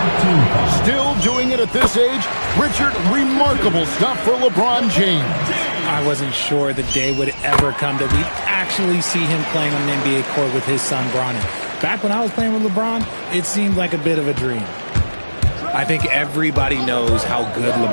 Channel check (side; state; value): both; inverted; correlation -1.00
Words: Still doing it at this age. Richard, remarkable stuff for LeBron James. I wasn't sure the day would ever come that we'd actually see him playing on an NBA court with his son, Bronny. Back when I was playing with LeBron, it seemed like a bit of a dream. I think everybody knows how good